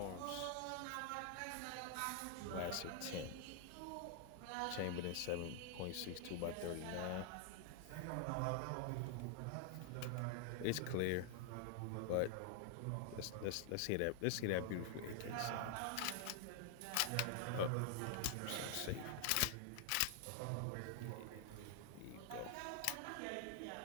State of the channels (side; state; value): both; different; correlation 0.00